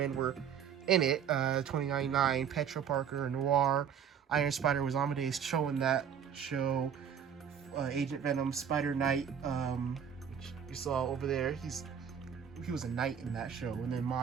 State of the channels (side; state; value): left; quieter; 8.0 dB